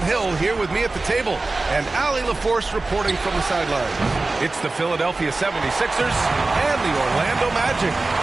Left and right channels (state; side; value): quieter; left; 3.3 dB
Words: Hill here with me at the table, and Allie LaForce reporting from the sideline. It's the Philadelphia 76ers and the Orlando Magic.